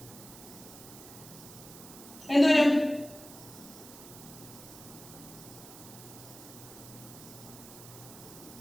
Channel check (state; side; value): noise; right; hiss, 16 dB below the sound